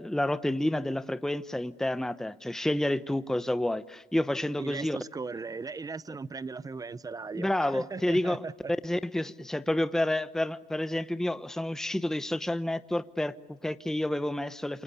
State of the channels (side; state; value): both; normal; correlation 0.96